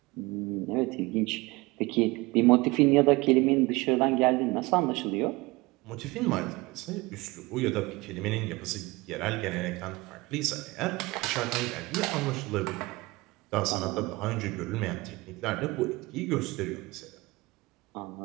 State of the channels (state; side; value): quieter; left; 22.7 dB